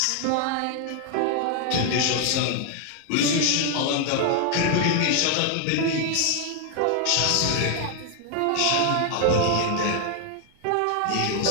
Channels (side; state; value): both; different; correlation 0.00